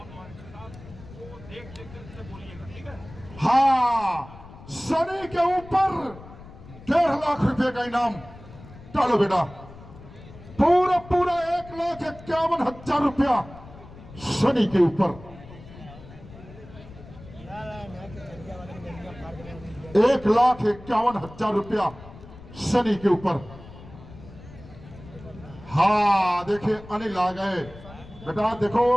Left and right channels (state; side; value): noise; left; rumble, 18 dB below the sound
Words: हाँ सनी के ऊपर 1.5 लाख रुपए का इनाम। डालो बेटा, पूरा 1,51,000 रुपया सनी के ऊपर। 1,51,000 रुपया सनी के ऊपर। हाँ देखिए अनिल आ गए। बेटा देखो